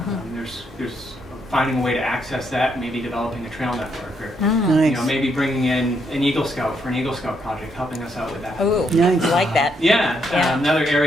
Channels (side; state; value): both; normal; correlation 0.76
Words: There's finding a way to access that, maybe developing a trail network, or Nice. maybe bringing in an Eagle Scout for an Eagle Scout project, helping us out with that. Ooh, Nice. I like that. Yeah, Yeah. another